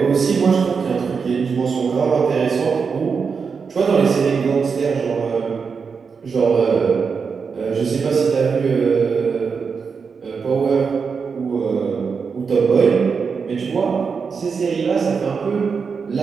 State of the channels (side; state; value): left; quieter; 5.6 dB